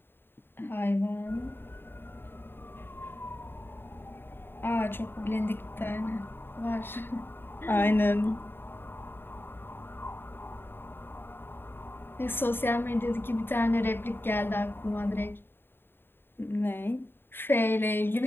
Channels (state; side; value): late; right; 0.10 ms